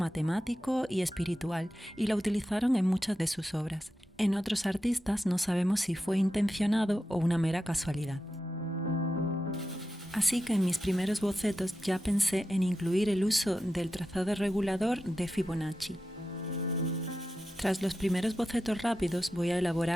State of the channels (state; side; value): normal; both; correlation 0.90